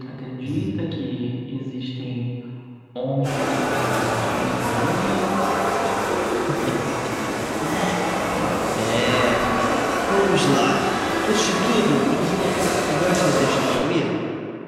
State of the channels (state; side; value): identical; both; correlation 1.00